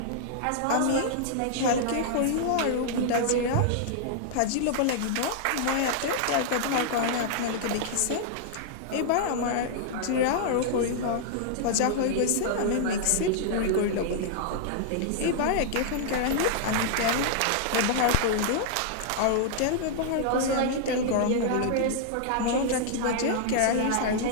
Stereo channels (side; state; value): both; different; correlation -0.01